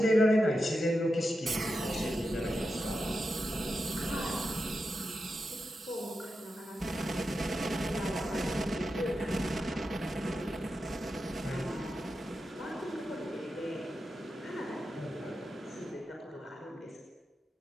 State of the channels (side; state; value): both; normal; correlation 0.89